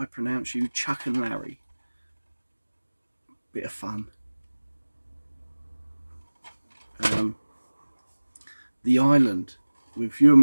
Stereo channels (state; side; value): inverted; both; correlation -1.00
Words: pronounce you Chuck and Larry. Bit of fun. The Island with